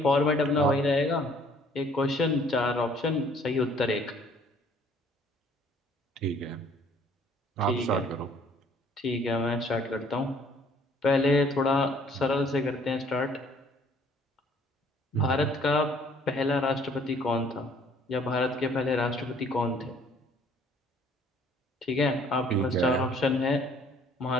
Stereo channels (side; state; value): both; normal; correlation 0.59